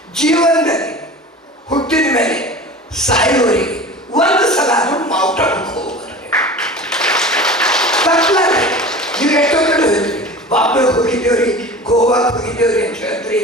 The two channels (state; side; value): normal; both; correlation 0.36